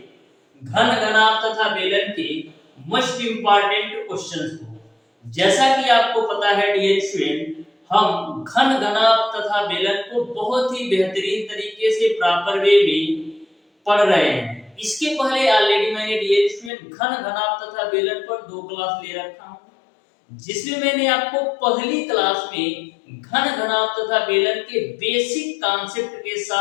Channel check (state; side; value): drops out; right; at 16.7 s